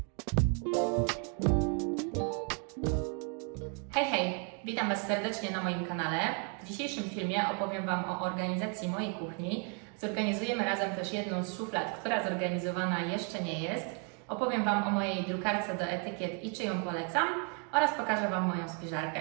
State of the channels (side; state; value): left; quieter; 39.3 dB